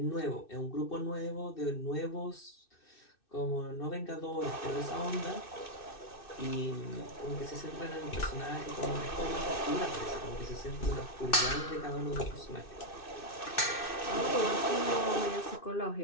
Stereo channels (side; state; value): right; late; 2.6 ms